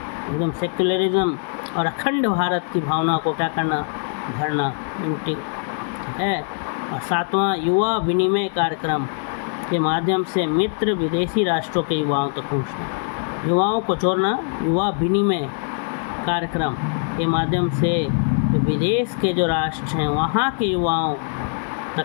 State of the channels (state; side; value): silent; right; 64 dB below the other